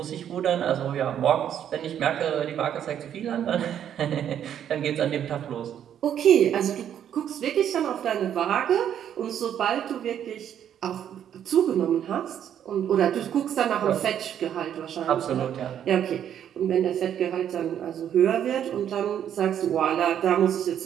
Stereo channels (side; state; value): left; quieter; 9.7 dB